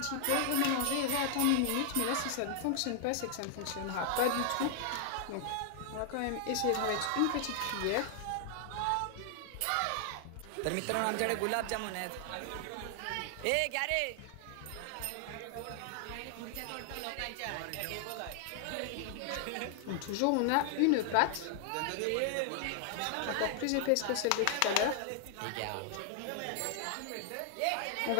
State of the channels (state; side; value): different; both; correlation -0.01